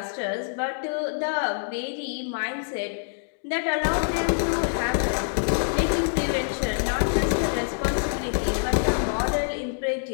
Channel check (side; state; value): right; silent; digital silence